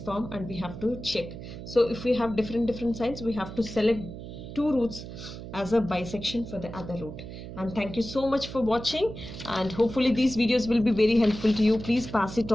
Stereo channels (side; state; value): right; noise; hum, 11 dB below the sound